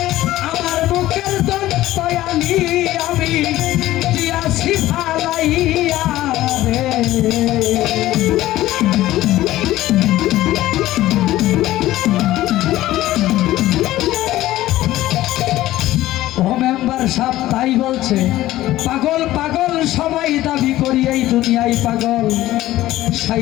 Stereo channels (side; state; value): right; quieter; 15.5 dB